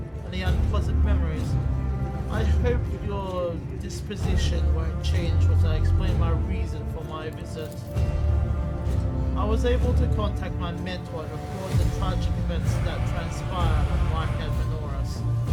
any unpleasant memories. I hope your disposition won't change once I explain my reason for my visit. I was able to contact my mentor and report the tragic events that transpired on Whitehead Menoras.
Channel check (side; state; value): both; identical; correlation 1.00